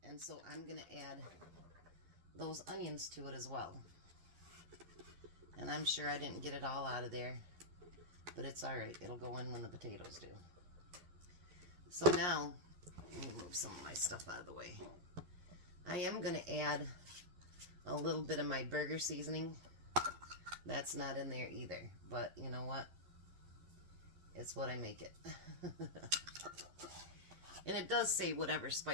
And so I'm going to add those onions to it as well. And I'm sure I didn't get it all out of there, but it's alright. It'll go in when the potatoes do. So now, let me move some of my stuff out of the way. I am going to add a little bit of my burger seasoning. That's not in there either, but you know what? It's what I make it. And it does say whatever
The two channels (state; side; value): late; left; 11 ms